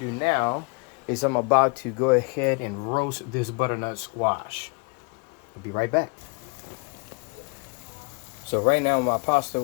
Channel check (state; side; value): quieter; right; 33.2 dB